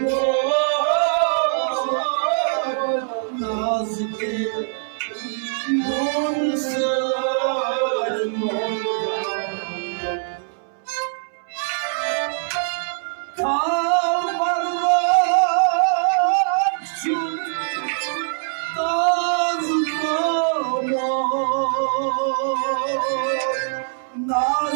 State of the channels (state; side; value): silent; left; 64 dB below the other